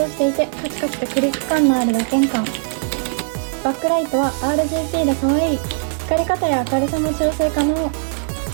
していてカチカチとクリック感のある打鍵感。バックライトは RGB で可愛い。光り方や明るさも調整可能。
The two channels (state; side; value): silent; left; 65 dB below the other